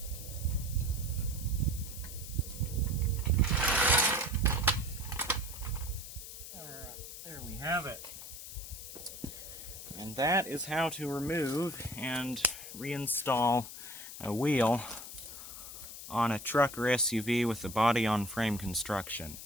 Alright, there we have it. And that is how to remove and reinstall a wheel on a truck or SUV with the body-on-frame construction.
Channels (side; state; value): left; noise; hiss, 11 dB below the sound